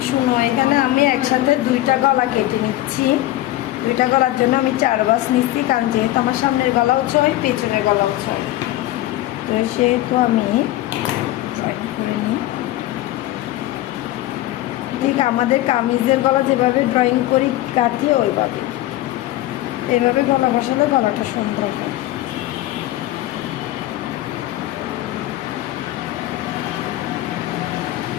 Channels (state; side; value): quieter; right; 15.7 dB